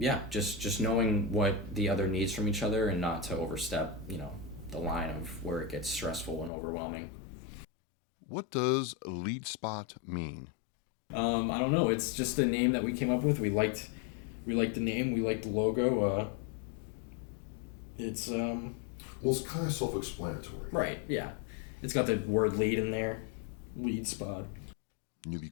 just knowing what the other needs from each other and not to overstep, the line of where it gets stressful and overwhelming. What does lead spot mean? I don't know. It's just a name that we came up with. We liked the name. We liked the logo. It's Well, it's kind of self-explanatory. right. Yeah, it's got the word lead in there. Lead spot. Newbie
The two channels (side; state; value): right; drops out; at 6.5 s